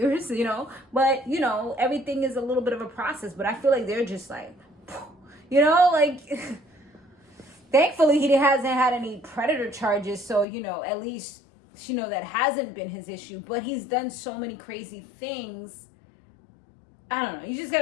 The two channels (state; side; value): drops out; right; at 10.5 s